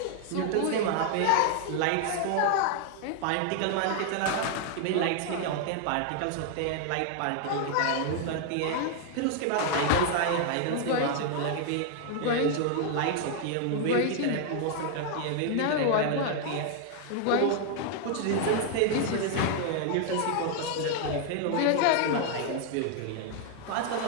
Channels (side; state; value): both; different; correlation 0.00